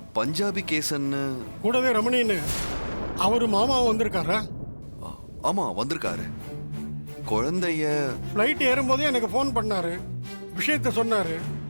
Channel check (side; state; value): both; inverted; correlation -1.00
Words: பஞ்சாபி கேசன்னு. கூடவே ரமணின்னு அவரு மாமாவும் வந்திருக்காரா? ஆமா வந்திருக்காரு. குழந்தைய ஃப்ளைட் ஏறும்போதே எனக்கு ஃபோன் பண்ணாரு, விஷயத்த சொன்னாரு,